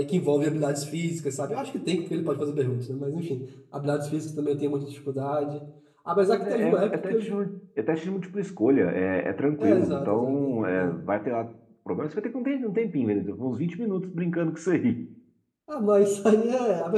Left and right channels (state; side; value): identical; both; correlation 1.00